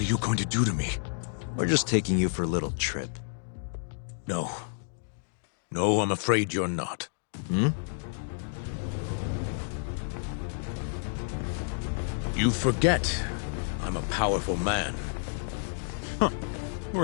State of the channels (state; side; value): silent; right; digital silence